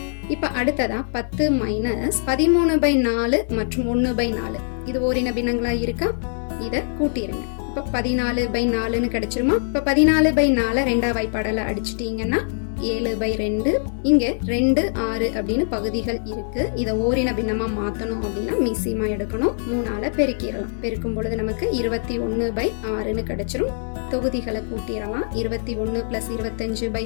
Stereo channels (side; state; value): right; silent; 63 dB below the other